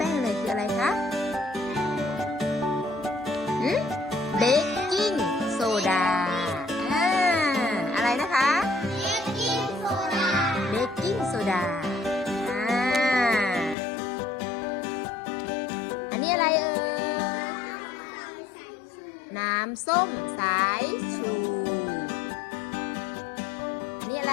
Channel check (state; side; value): drops out; right; at 13.8 s